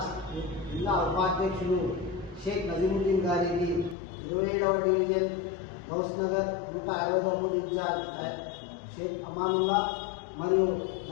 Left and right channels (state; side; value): drops out; right; at 4.0 s